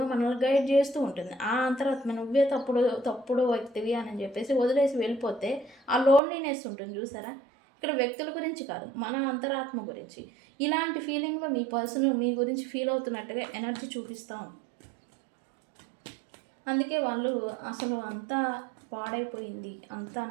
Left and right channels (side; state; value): left; drops out; at 6.2 s